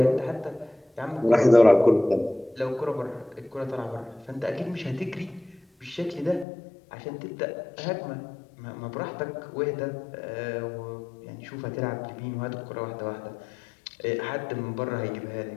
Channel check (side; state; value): right; drops out; at 6.5 s